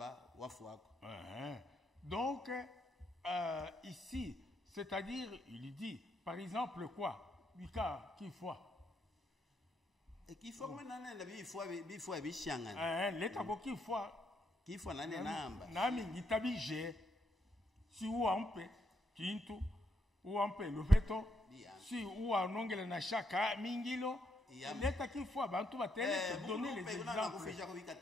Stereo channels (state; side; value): normal; both; correlation 0.77